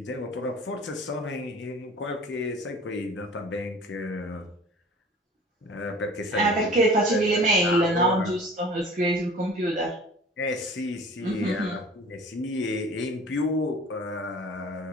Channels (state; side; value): normal; both; correlation 0.45